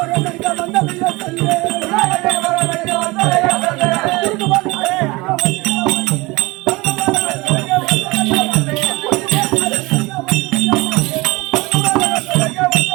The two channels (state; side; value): quieter; left; 23.0 dB